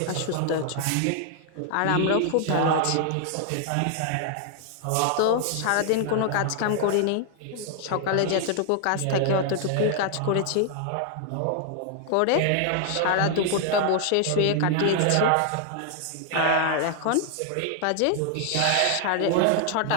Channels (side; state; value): both; different; correlation 0.00